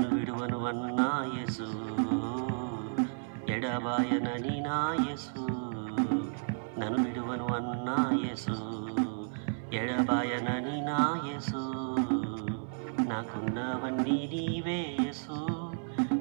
విడువను అన్నా యేసు, ఎడబాయనని నా యేసు. నన్ను విడువను అన్నా యేసు, ఎడబాయనని నా యేసు. నాకున్నవన్నీ నీవే యేసు,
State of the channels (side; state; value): left; silent; 56 dB below the other